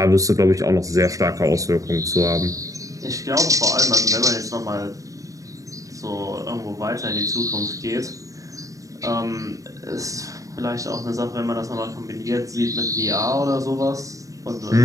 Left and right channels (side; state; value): left; late; 0.16 ms